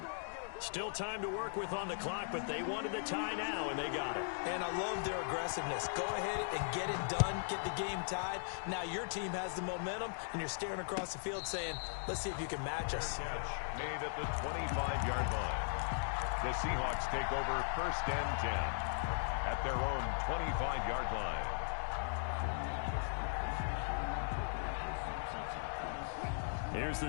Still time to work with on the clock, but they wanted the tie now, and they got it. And I love their aggressiveness. Go ahead and get it done, get the game tied. Now your team has the momentum, and you're staring across the field saying, let's see if you can match us. Made at the 25-yard line. The Seahawks take over 1st and 10 at their own 25-yard line. Here's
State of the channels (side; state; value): right; silent; digital silence